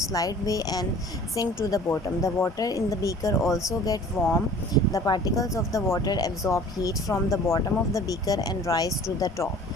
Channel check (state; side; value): normal; both; correlation 0.47